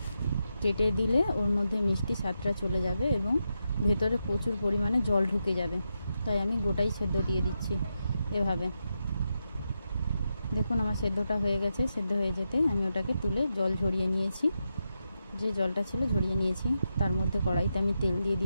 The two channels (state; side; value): inverted; both; correlation -0.87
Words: কেটে দিলে ওর মধ্যে মিষ্টি স্বাদটা চলে যাবে এবং ভেতরে প্রচুর পরিমাণে জল ঢুকে যাবে, তাই আমি গোটাই সেদ্ধ দিয়ে দিচ্ছি। এভাবে দেখুন আমার সেদ্ধটা হয়ে গেছে। সেদ্ধ হয়ে যেতে আমি ওটাকে তুলে জল ঝরিয়ে নিয়েছি, যে জলটা ছিল ঝরিয়ে নিয়েছি। তার মধ্যে কড়াইতে আমি তেল দিয়ে